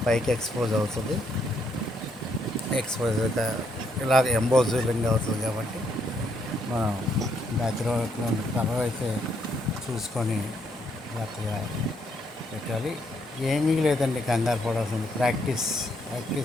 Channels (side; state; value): both; normal; correlation 0.74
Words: పైకి ఎక్స్పోజ్ అవుతుంది. ఎక్స్పోజ్ ఇలా ఎంబోజింగ్ అవుతుంది కాబట్టి మనం బ్యాక్గ్రౌండ్ కలర్ అయితే చూసుకొని జాగ్రత్తగా పెట్టాలి. ఏమీ లేదండి, కంగారు పడాల్సింది ప్రాక్టీస్.